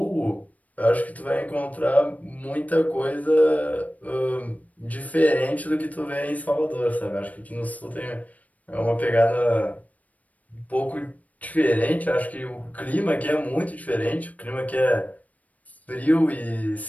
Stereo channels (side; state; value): right; late; 0.072 ms